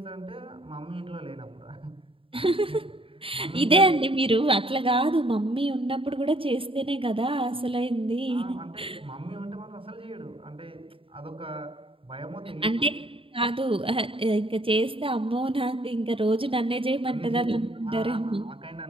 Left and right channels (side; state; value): left; late; 0.26 ms